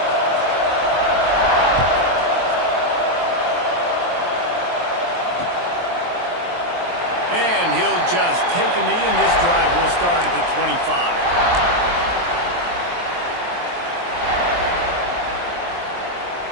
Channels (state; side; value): late; left; 23 ms